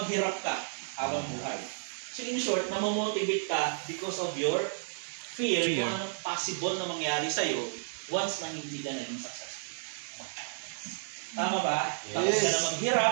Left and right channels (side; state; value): left; silent; digital silence